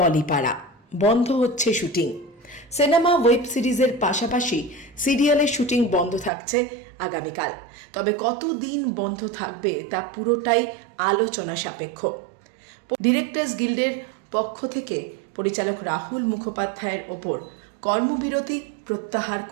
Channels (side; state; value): left; drops out; at 6.3 s